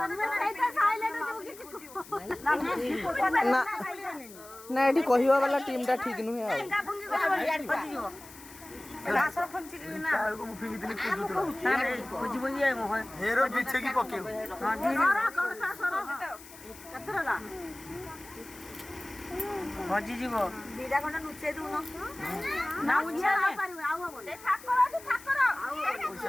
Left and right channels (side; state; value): left; noise; hiss, 18 dB below the sound